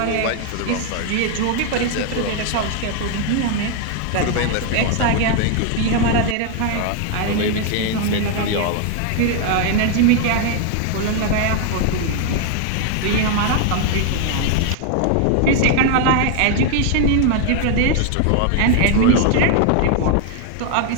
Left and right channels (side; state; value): both; different; correlation 0.00